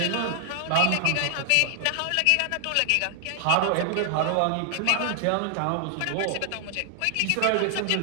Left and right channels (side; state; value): both; different; correlation 0.00